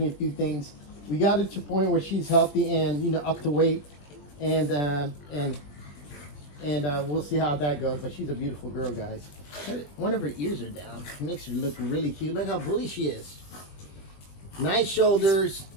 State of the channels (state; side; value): late; right; 20 ms